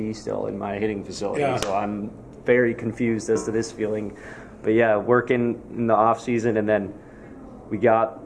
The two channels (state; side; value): identical; both; correlation 1.00